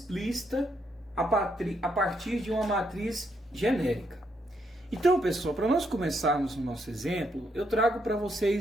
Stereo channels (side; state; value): both; normal; correlation 0.76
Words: a partir de uma matriz genérica. Então, pessoal, para nós começarmos o nosso exemplo, eu trago para